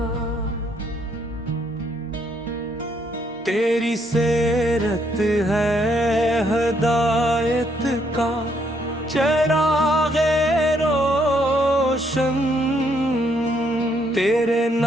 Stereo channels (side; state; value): both; normal; correlation 0.71